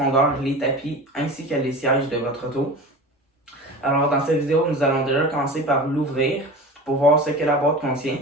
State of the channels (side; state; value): both; normal; correlation 0.33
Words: les tapis ainsi que les sièges de votre auto. Alors, dans cette vidéo, nous allons déjà commencer par l'ouvrir pour voir ce que la boîte contient